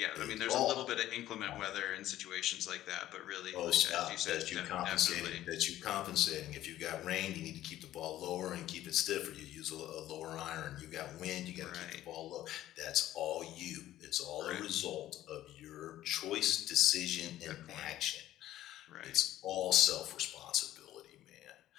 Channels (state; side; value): quieter; right; 13.7 dB